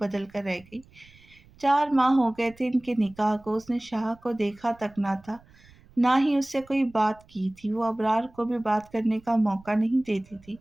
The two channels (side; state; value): right; noise; rumble, 27 dB below the sound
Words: کر رہ گئی۔ 4 ماہ ہو گئے تھے ان کے نکاح کو۔ اس نے شاہ کو دیکھا تک نہ تھا، نہ ہی اس سے کوئی بات کی تھی۔ وہ ابرار کو بھی بات کرنے کا موقع نہیں دیتی تھی۔